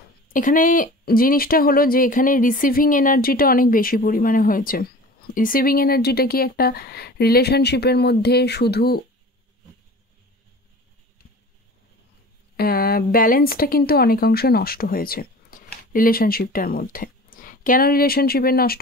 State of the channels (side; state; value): both; normal; correlation 0.40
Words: এখানে জিনিসটা হলো যে এখানে রিসিভিং এনার্জিটা অনেক বেশি পরিমাণে হয়েছে। রিসিভিং এনার্জিটা কি একটা রিলেশনশিপের মধ্যে শুধু ব্যালেন্সটা কিন্তু অনেকাংশে নষ্ট হয়েছে রিলেশনশিপটার মধ্যে। কেন রিলেশনশিপের নষ্ট